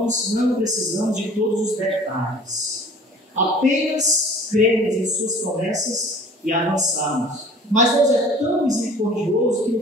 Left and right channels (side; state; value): both; normal; correlation 0.48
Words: não precisamos de todos os detalhes. Apenas cremos em suas promessas e avançarmos. Mas Deus é tão misericordioso que